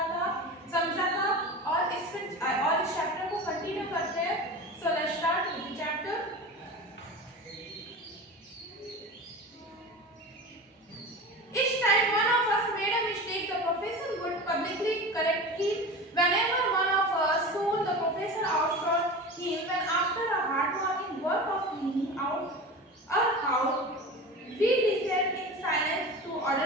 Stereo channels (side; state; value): both; normal; correlation 0.31